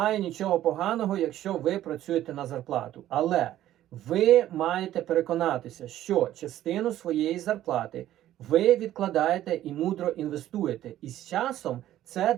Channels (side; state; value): left; quieter; 13.1 dB